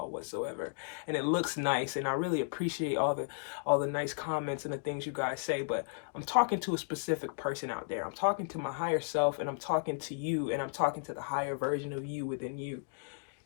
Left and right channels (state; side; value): silent; right; digital silence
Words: whatsoever. And it looks nice, and I really appreciate all the nice comments and the things you guys say, but I'm talking to a specific person out there. I'm talking to my higher self, and I'm talking to you, and I'm talking to the higher version of you within you.